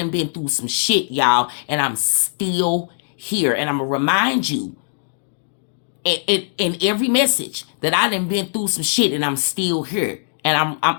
been through some shit, y'all. And I'm still here. And I'm going to remind you in every message that I done been through some shit and I'm still here. And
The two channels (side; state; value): right; silent; digital silence